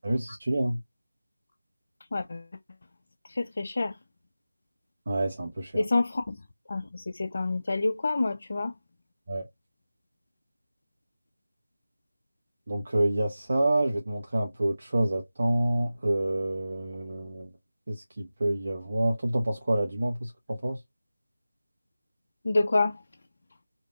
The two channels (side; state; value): both; inverted; correlation -0.95